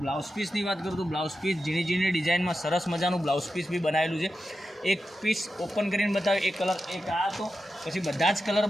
બ્લાઉઝ પીસની વાત કરું તો બ્લાઉઝ પીસ ઝીણી ડિઝાઇનમાં સરસ મજાનું બ્લાઉઝ પીસ બી બનાવેલું છે। એક પીસ ઓપન કરીને બતાવ્યું, એક કલર એક આ હતો, પછી બધા જ કલર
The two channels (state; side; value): normal; both; correlation 0.91